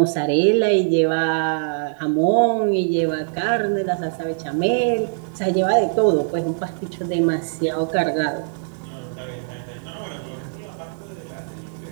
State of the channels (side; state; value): left; silent; digital silence